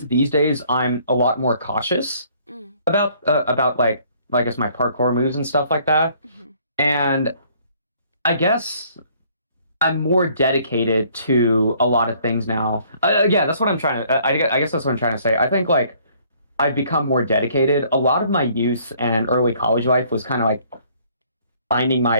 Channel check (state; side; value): inverted; both; correlation -0.61